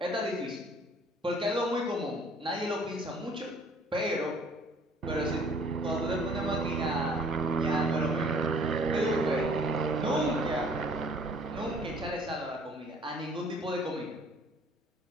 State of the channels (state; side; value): normal; both; correlation 0.56